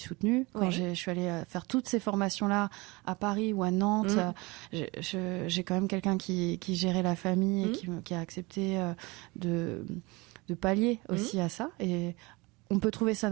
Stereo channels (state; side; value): quieter; left; 24.6 dB